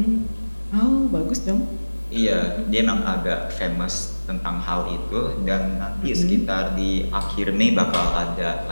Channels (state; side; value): inverted; both; correlation -1.00